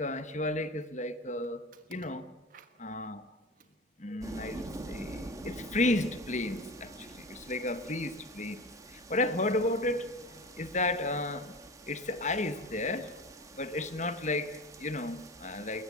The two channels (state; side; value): normal; both; correlation 0.31